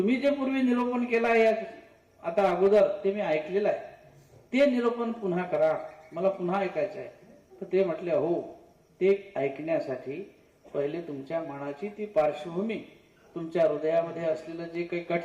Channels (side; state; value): both; identical; correlation 1.00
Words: जे पूर्वी निरूपण केलं आहे आता अगोदर, ते मी ऐकलेलं आहे, ते निरूपण पुन्हा करा, मला पुन्हा ऐकायचं आहे. तर ते म्हटले, हो, ते ऐकण्यासाठी पहिले तुमच्या मनाची ती पार्श्वभूमी, तुमच्या हृदयामध्ये असलेलं जे काही